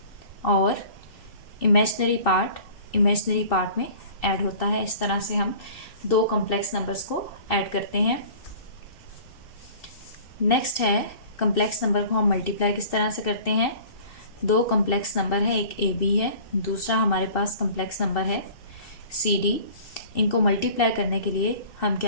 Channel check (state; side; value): late; right; 2.7 ms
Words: और इमेजिनरी पार्ट में ऐड होता है। इस तरह से हम दो कम्प्लेक्स नंबर्स को ऐड करते हैं। नेक्स्ट है कम्प्लेक्स नंबर को हम मल्टीप्लाई किस तरह से करते हैं। दो कम्प्लेक्स नंबर है, एक ए बी है, दूसरा हमारे पास कम्प्लेक्स नंबर है सी डी। इनको मल्टीप्लाई करने के लिए हम